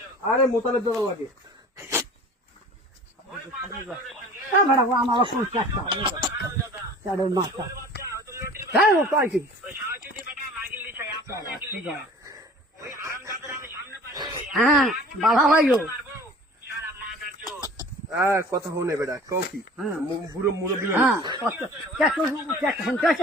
আরে মোতালেব দোকান লাগে। ওই পাঁচটা ছেলের সঙ্গে? আমার কোন চেষ্টা হারামজাদা। চারের মাথা ওর বাচ্চা, ওই তো লটির হ্যাঁ ও বাচ্চা। পাইছি ওই সাহায্যদি বেটা মাগিল দিছে, আপনার মাগিল দিছে। ওই হারামজাদার আমি সামনে পাইলে, হ্যাঁ বাধা ভাইও মারবো, সারা মাদার চোদ। কথা হনে বেটা কও কি? হ্যাঁ। বুড়ো মুরব্বী হ্যাঁ চেষ্টা শুনতে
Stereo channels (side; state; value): both; normal; correlation 0.44